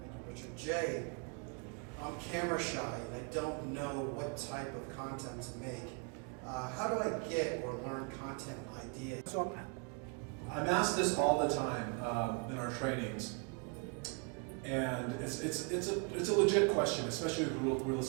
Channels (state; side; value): quieter; left; 35.0 dB